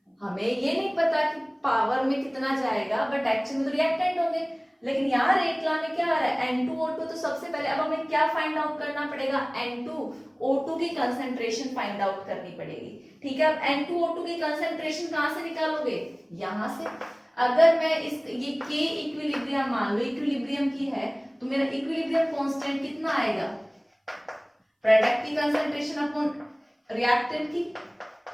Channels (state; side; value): identical; both; correlation 1.00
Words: हमें ये नहीं पता कि पावर में कितना जाएगा, बट एक्चुअली में तो रिएक्टेंट होंगे। लेकिन यहाँ रेट ला में क्या आ रहा है, N2O2। तो सबसे पहले अब हमें क्या फाइंड आउट करना पड़ेगा, N2O2 की कंसंट्रेशन फाइंड आउट करनी पड़ेगी। ठीक है, अब N2O2 की कंसंट्रेशन कहाँ से निकालोगे, यहाँ से। अगर मैं इस ये K इक्विलिब्रियम मान लो इक्विलिब्रियम की है, तो मेरा इक्विलिब्रियम कांस्टेंट कितना आएगा, प्रोडक्ट की कंसंट्रेशन अपॉन रिएक्टेंट की,